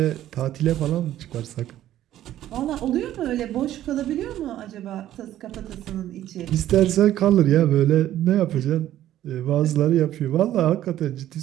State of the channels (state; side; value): quieter; left; 12.8 dB